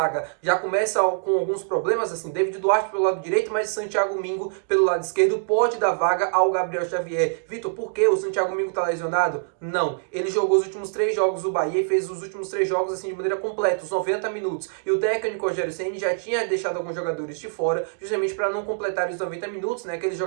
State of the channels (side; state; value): left; silent; digital silence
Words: já começa com alguns problemas, assim, David Duarte pelo lado direito, mas Santiago Mingo pelo lado esquerdo pode dar vaga ao Gabriel Xavier. Vitor, por que o Santiago Mingo está lesionado? Não, ele jogou os últimos 3 jogos do Bahia e fez os últimos 3 jogos assim de maneira completa, os 90 minutos. E o técnico Rogério Ceni já tinha deixado alguns jogadores de fora, justamente para não completar os 90 minutos, né? Aqueles